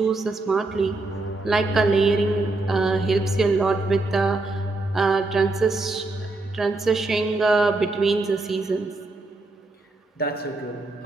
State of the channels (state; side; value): quieter; left; 3.1 dB